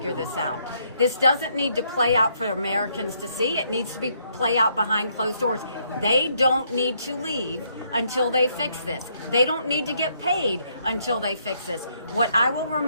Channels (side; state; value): both; inverted; correlation -0.72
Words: this out. This doesn't need to play out for Americans to see. It needs to be play out behind closed doors. They don't need to leave until they fix this. They don't need to get paid until they fix this. What I will